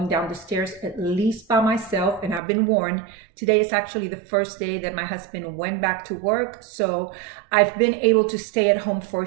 down the stairs, at least by myself. And I've been warned, today is actually the first day that my husband went back to work. So I've been able to stay at home for a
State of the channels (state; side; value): drops out; left; at 2.4 s